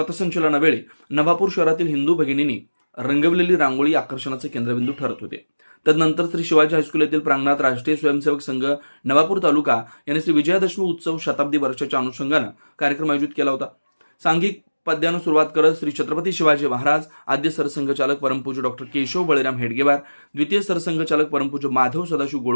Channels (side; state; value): both; inverted; correlation -1.00